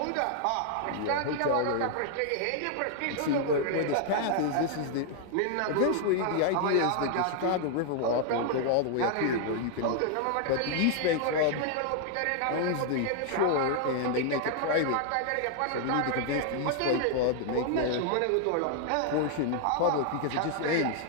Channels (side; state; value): both; different; correlation 0.00